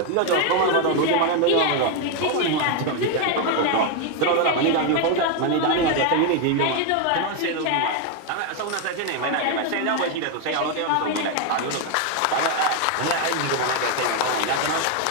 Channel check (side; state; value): both; different; correlation 0.01